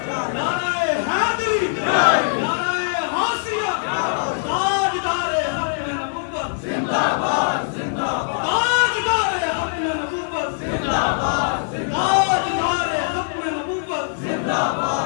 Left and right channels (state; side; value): silent; right; digital silence